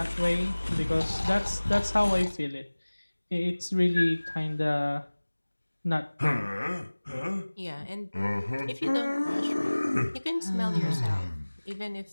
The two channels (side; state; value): both; inverted; correlation -1.00